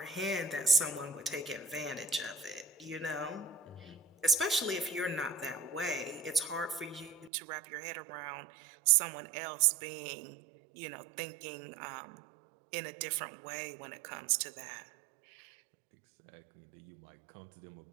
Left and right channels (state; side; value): drops out; left; at 7.3 s